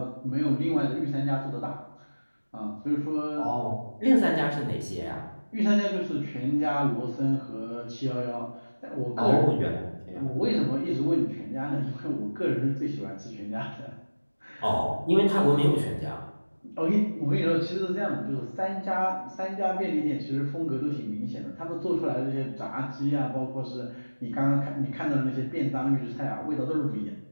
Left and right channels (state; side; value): inverted; both; correlation -1.00